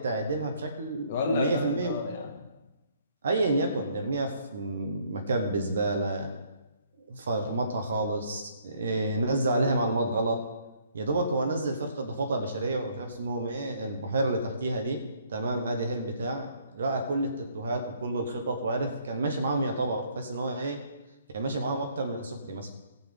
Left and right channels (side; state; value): both; inverted; correlation -0.64